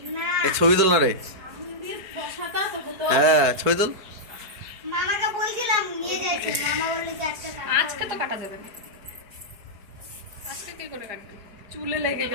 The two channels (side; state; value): left; late; 4.7 ms